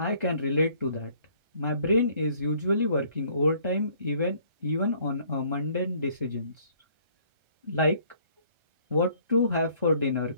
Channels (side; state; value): left; late; 1.3 ms